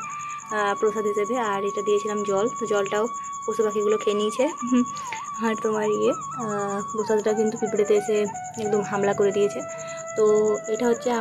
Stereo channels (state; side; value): identical; both; correlation 1.00